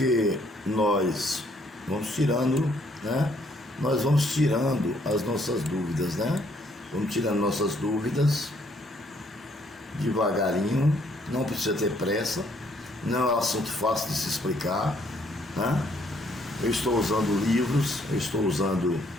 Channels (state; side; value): normal; both; correlation 0.67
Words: nós vamos tirando, né? Nós vamos tirando as nossas dúvidas, né? Vamos tirando nossas dúvidas devagarinho, não precisa ter pressa, não é um assunto fácil de se explicar, né? Eu estou usando livros, eu estou usando